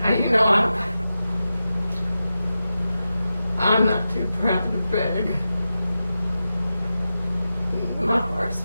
You know, I'm not too proud to beg. My heart's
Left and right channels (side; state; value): both; inverted; correlation -0.92